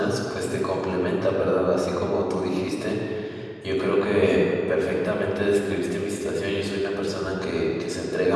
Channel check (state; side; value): identical; both; correlation 1.00